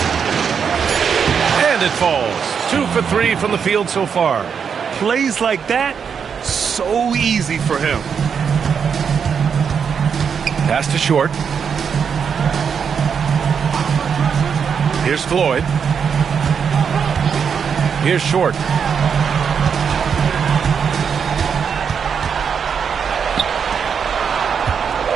And it falls. 2 for 3 from the field so far. Plays like that, so easy for him. Pass to Short. Here's Floyd. Here's Short.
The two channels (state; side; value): quieter; left; 6.8 dB